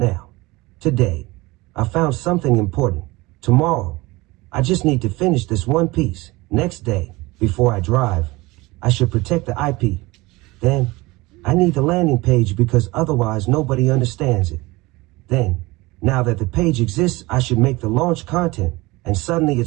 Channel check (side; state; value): left; quieter; 22.0 dB